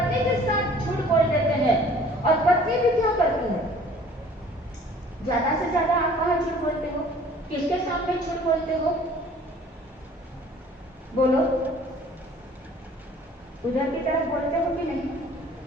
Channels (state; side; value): normal; both; correlation 0.52